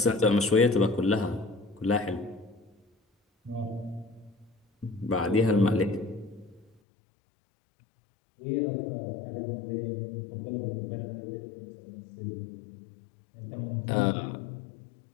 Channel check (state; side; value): drops out; right; at 6.7 s